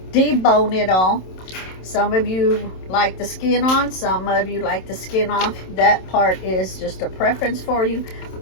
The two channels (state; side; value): late; right; 27 ms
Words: debone it all. Some of you like the skin on, some of you like the skin off. That part is just a preference for you.